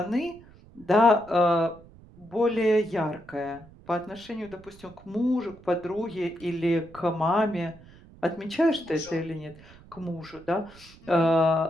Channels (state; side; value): noise; right; rumble, 23 dB below the sound